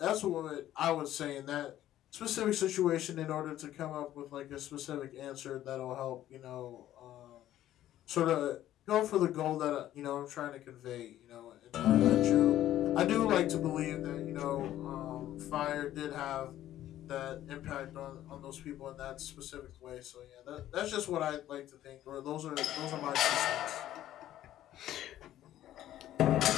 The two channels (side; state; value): right; quieter; 13.0 dB